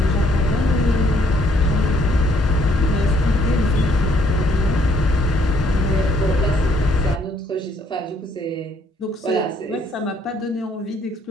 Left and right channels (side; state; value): both; normal; correlation 0.67